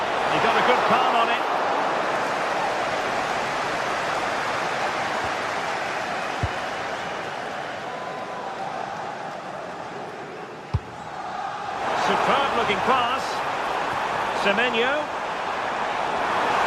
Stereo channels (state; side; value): identical; both; correlation 1.00